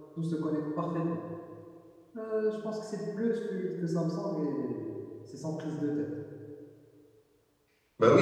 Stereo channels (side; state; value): both; identical; correlation 1.00